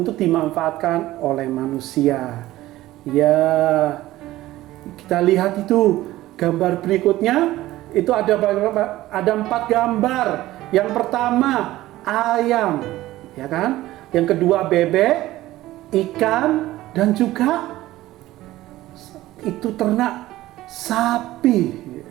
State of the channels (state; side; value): quieter; left; 16.2 dB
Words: dimanfaatkan oleh manusia. Ya, kita lihat itu gambar berikutnya. Itu ada 4 gambar. Yang pertama ayam, ya kan? Yang kedua bebek, ikan, dan juga itu ternak sapi.